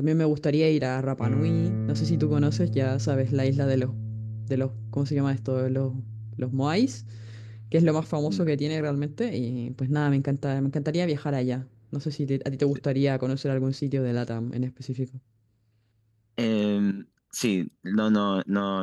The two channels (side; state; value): both; identical; correlation 1.00